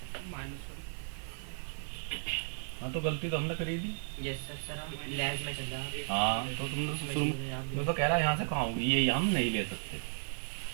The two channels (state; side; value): silent; left; digital silence